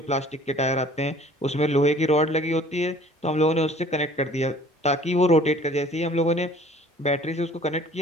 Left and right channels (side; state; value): both; normal; correlation 0.51